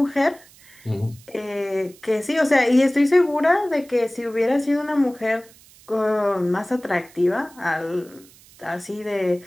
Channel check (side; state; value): right; noise; hiss, 25 dB below the sound